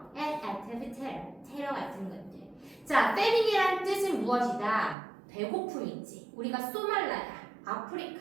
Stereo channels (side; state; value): left; drops out; at 5.0 s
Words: and active terror, 테러 같은 것들. 자, famine이라는 뜻은 무엇이다? 배고픔이지. 우리가 소말라야, 아프리카